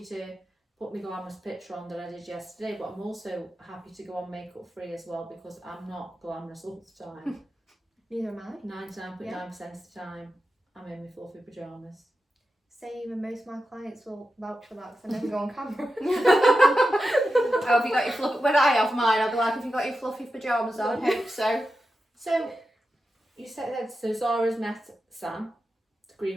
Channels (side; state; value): both; normal; correlation 0.91